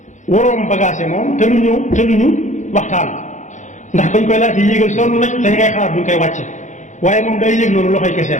waroom bagage moom te lu ñu waxtaan ndax bañ koy laajte yéegal sonn nañ dañ ngay xalaat buñ koy wàcce waaye moom day yéeg noonu loxoy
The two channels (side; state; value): right; late; 0.35 ms